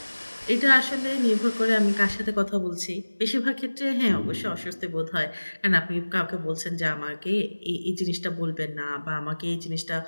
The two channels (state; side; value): inverted; both; correlation -1.00